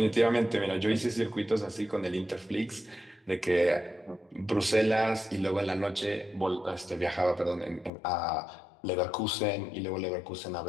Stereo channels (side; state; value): right; drops out; at 7.9 s